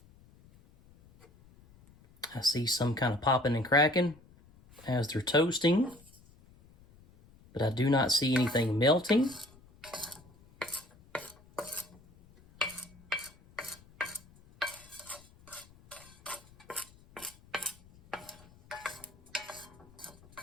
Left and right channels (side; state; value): left; noise; rumble, 26 dB below the sound